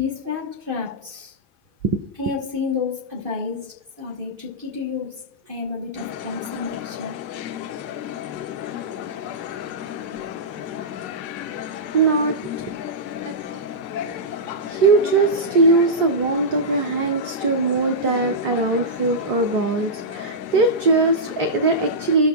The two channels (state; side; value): late; left; 2.5 ms